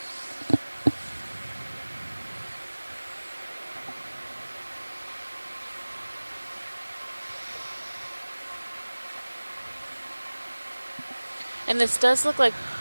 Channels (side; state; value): both; inverted; correlation -1.00